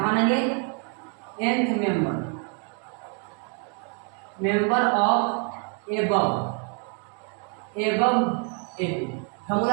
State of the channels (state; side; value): quieter; left; 39.9 dB